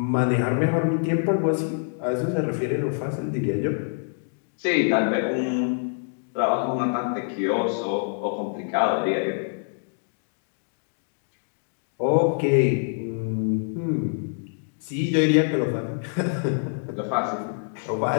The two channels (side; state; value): right; silent; digital silence